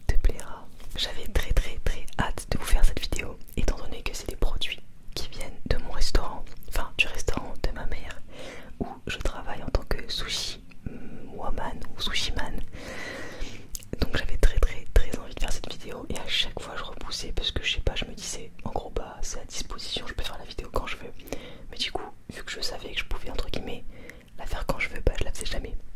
te plaira. J'avais très hâte de vous faire cette vidéo étant donné que c'est des produits qui viennent de mon restaurant, enfin du restaurant de ma mère où je travaille en tant que sushi woman ou sushi man. Donc j'avais très envie de faire cette vidéo et à chaque fois je repoussais parce que je sais pas, je me disais en gros bah c'est à disposition, je peux faire la vidéo quand je veux. Mais du coup vu que je savais que je pouvais entre guillemets la faire quand je veux, bah je la faisais jamais.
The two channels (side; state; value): both; identical; correlation 1.00